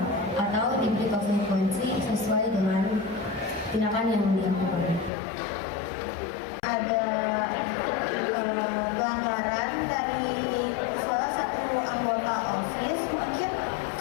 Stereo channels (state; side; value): drops out; right; at 5.1 s